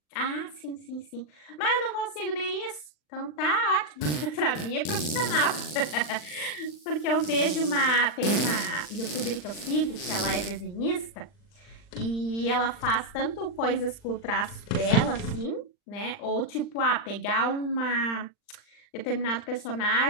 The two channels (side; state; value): right; late; 39 ms